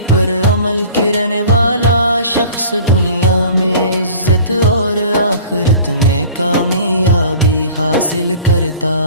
پر عمل کرنے والا شخص دنیا میں عزت اور آخرت میں کامیابی حاصل کرتا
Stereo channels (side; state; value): both; inverted; correlation -0.45